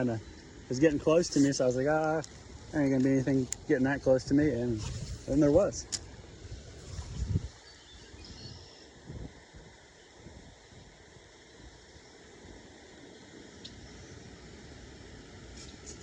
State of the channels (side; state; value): both; identical; correlation 1.00